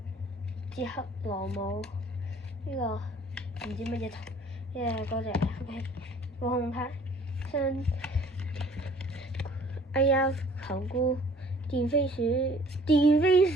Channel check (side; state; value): both; normal; correlation 0.54